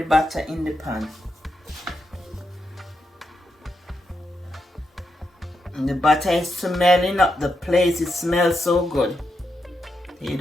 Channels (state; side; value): normal; both; correlation 0.84